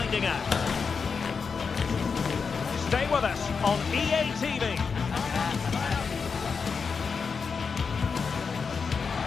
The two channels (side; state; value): right; quieter; 5.5 dB